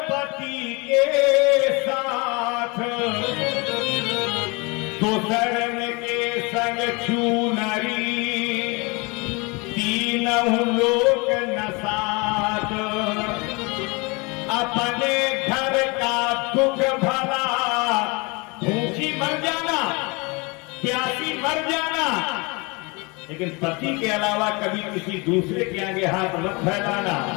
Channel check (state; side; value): quieter; right; 28.0 dB